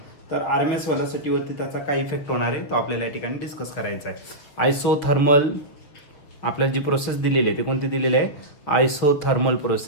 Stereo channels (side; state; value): right; late; 7.1 ms